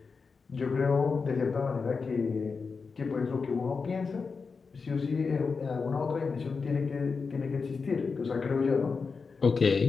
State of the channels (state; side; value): quieter; right; 4.9 dB